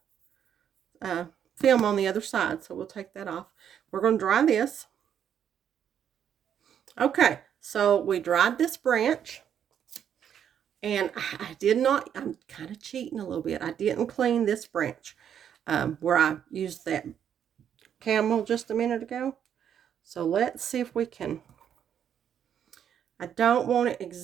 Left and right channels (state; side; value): quieter; left; 8.9 dB